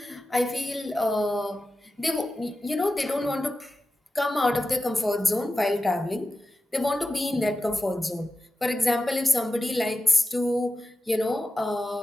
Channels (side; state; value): both; normal; correlation 0.92